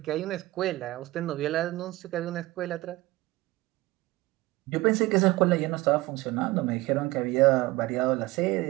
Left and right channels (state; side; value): quieter; left; 19.4 dB